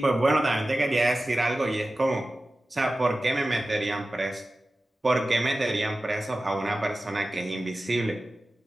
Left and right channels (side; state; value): both; normal; correlation 0.95